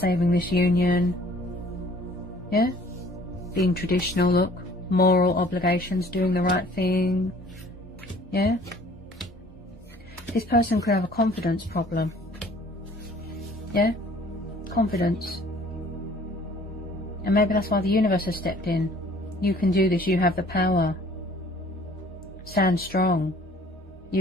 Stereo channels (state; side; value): normal; both; correlation 0.54